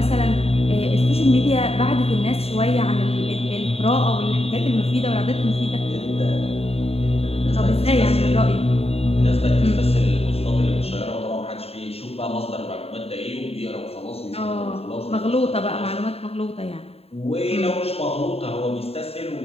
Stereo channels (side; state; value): right; late; 0.29 ms